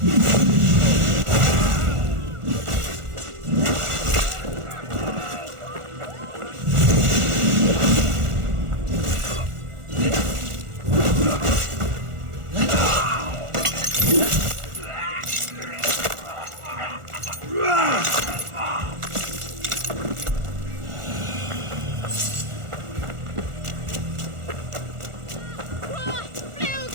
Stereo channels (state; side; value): late; left; 1.4 ms